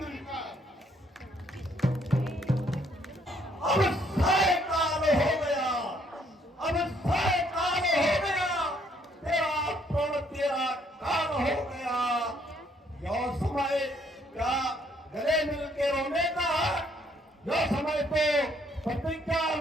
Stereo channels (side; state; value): both; normal; correlation 0.67